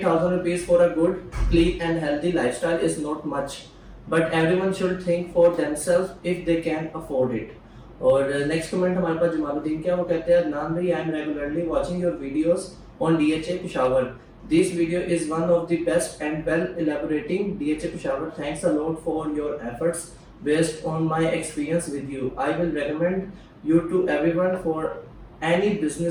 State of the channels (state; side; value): identical; both; correlation 1.00